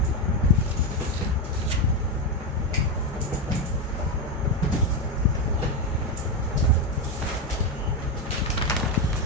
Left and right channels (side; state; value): both; normal; correlation 0.10